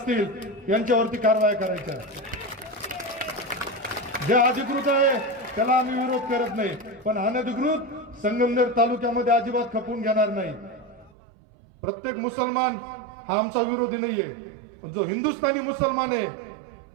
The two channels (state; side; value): drops out; left; at 11.1 s